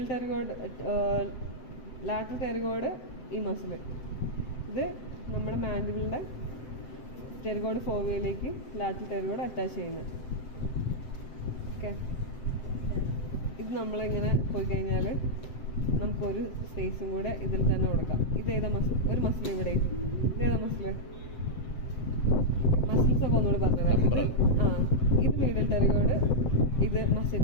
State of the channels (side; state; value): right; late; 7.8 ms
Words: ടെറിഗോയിഡ്, ലാറ്ററൽ ടെറിഗോയിഡ് ഈ മസിൽ. ഇത് നമ്മുടെ മാൻഡിബിളിൻ്റെ ടെറിഗോയിഡ് ഫോവിയയിലേക്ക് ലാറ്ററൽ ടെറിഗോയിഡ് അറ്റാച്ച് ചെയ്യുന്നത്. ഓക്കെ, ഇത് നമ്മളിങ്ങനെ പോയി കഴിഞ്ഞാൽ നമുക്കൊരു സ്പേസും കൂടെ ഇതിൽ തന്നെ കൊടുക്കാം. ഇതേതാ മസിൽ? ഒരു മസിൽ ഇവിടെ. ഇതേതാ മസിൽ? മസിൽസ് ഒക്കെ ഒന്നുകൂടി പറഞ്ഞുതരാം. ഇത് മീഡിയൽ ടെറിഗോയിഡ്, ഇത്